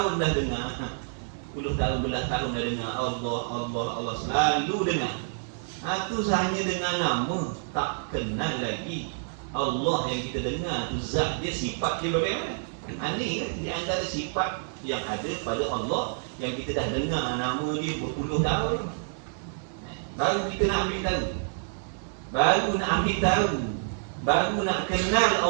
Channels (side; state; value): left; silent; digital silence